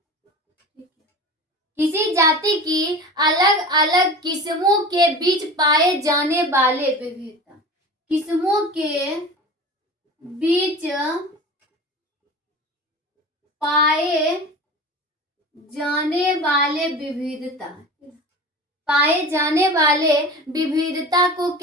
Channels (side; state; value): both; normal; correlation 0.34